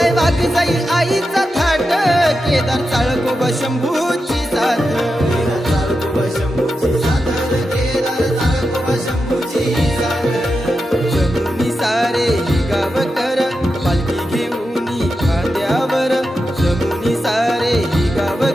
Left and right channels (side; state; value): both; normal; correlation 0.89